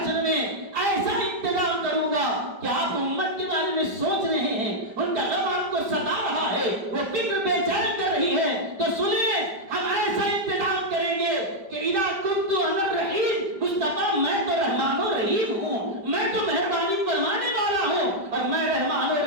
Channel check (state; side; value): late; left; 5.1 ms